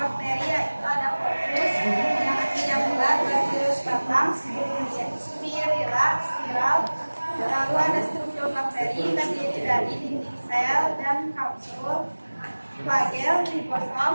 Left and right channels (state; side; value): inverted; both; correlation -1.00